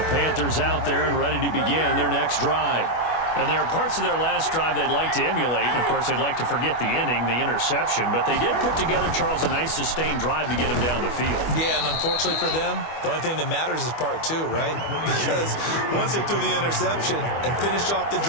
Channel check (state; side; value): late; right; 25 ms